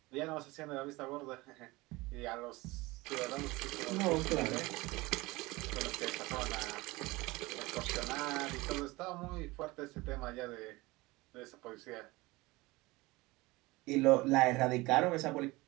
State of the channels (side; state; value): left; quieter; 21.7 dB